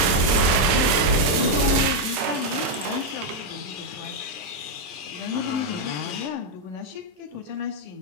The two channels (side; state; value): left; late; 27 ms